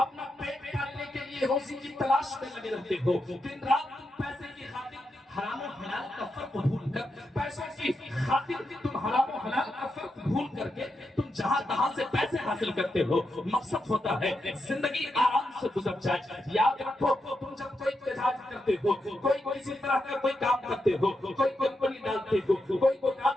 پیٹ پالنے کے لیے روزی کی تلاش میں لگے رہتے ہو، دن رات تم پیسے کی خاطر حرام و حلال کا فرق بھول کر، پیسوں کی خاطر تم حرام و حلال کا فرق بھول کر کے تم جہاں تہاں سے پیسے حاصل کرتے ہو. مقصد ہوتا ہے زندگی آرام سے گزر جائے. یاد رکھو تم جب کوئی تجارت کرتے ہو، کوئی کسی طرح کا کوئی کام کرتے ہو، کوئی کمپنی ڈالتے ہو، کوئی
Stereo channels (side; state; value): both; normal; correlation 0.85